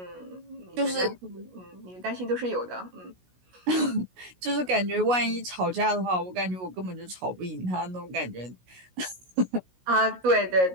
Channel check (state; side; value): late; left; 16 ms